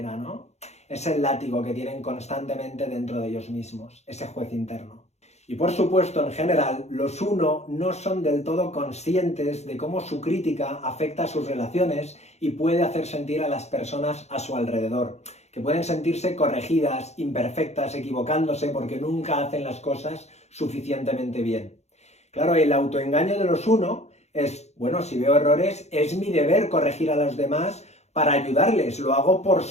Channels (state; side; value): late; right; 0.32 ms